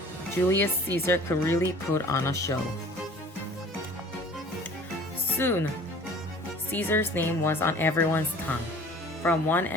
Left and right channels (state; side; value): normal; both; correlation 0.47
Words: Julius Caesar could really put on a show. Soon, Caesar's name was on everyone's tongue. From one